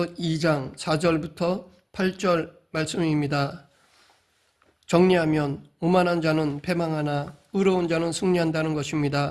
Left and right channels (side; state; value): both; identical; correlation 1.00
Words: 2장 4절부터 8절 말씀입니다. 정리하면 오만한 자는 패망하나 의로운 자는 승리한다는